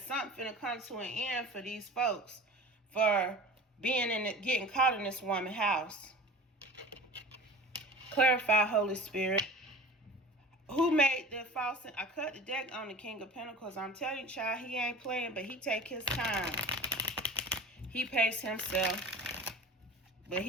finna come to an end for these folks for being getting caught in this woman's house. Clarify, Holy Spirit. Who made the false? I cut the deck on the King of Pentacles. I'm telling you, child, he ain't playing, but he take his time. He pace himself. But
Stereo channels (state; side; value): normal; both; correlation 0.39